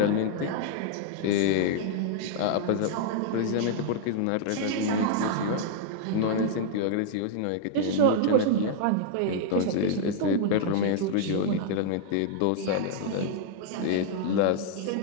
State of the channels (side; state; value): both; different; correlation -0.01